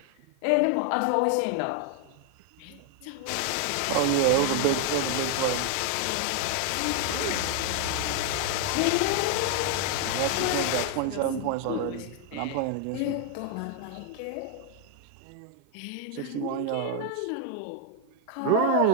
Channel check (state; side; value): different; both; correlation 0.00